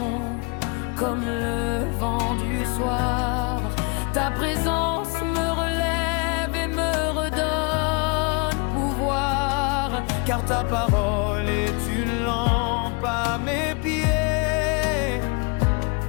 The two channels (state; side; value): quieter; right; 32.5 dB